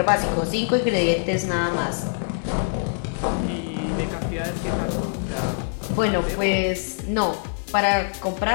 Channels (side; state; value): right; silent; 63 dB below the other